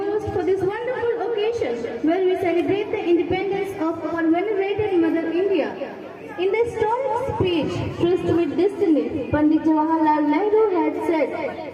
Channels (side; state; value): both; identical; correlation 1.00